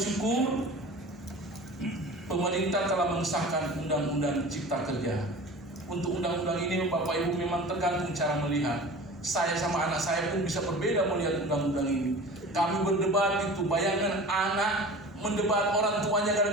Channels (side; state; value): both; normal; correlation 0.38